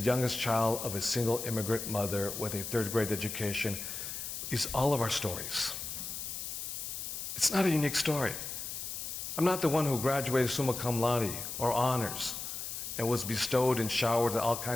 child of a single immigrant mother with a 3rd grade education is all of our stories. It's not a unique story. I'm not the one who graduated summa cum laude or honors and was bestowed and showered with all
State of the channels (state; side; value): noise; left; hiss, 6 dB below the sound